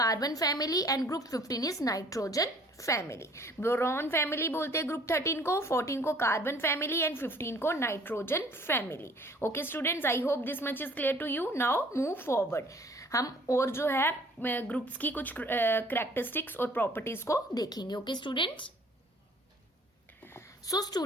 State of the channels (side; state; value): both; normal; correlation 0.55